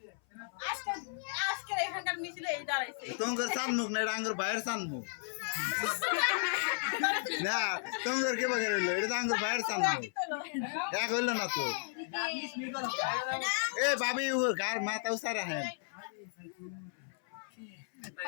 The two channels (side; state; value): right; silent; 55 dB below the other